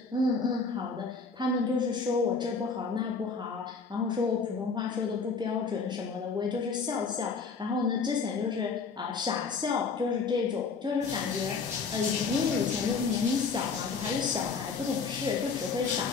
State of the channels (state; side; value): quieter; right; 4.9 dB